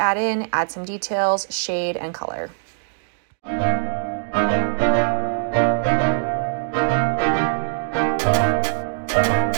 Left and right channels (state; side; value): silent; left; digital silence